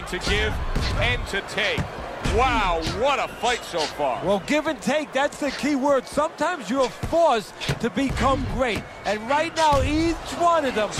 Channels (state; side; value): identical; both; correlation 1.00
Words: to give and to take. Wow, what a fight so far. Well, give and take, that's the key word. Sometimes you're forced to become great. And right now, each one of them